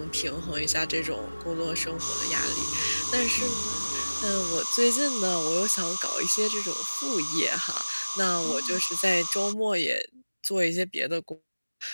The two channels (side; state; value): both; inverted; correlation -1.00